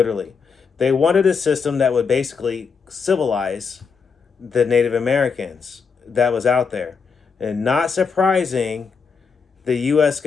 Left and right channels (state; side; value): quieter; right; 5.6 dB